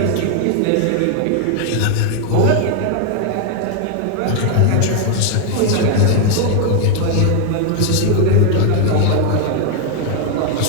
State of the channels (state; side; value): different; both; correlation 0.00